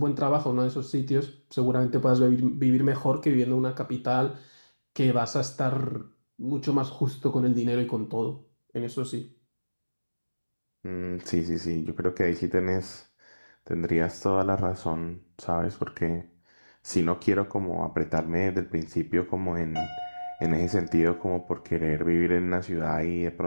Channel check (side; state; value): both; inverted; correlation -1.00